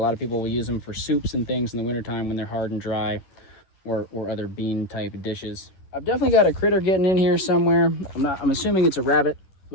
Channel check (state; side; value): late; right; 11 ms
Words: of people will use them for soups and things in the wintertime when they're hard and dry, or other bean type dishes. I've definitely got a critter getting in here somewhere. I'm assuming it's a rabbit,